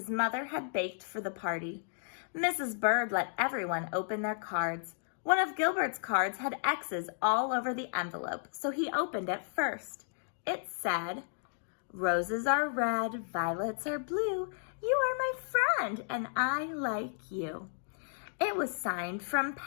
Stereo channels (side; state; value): right; silent; digital silence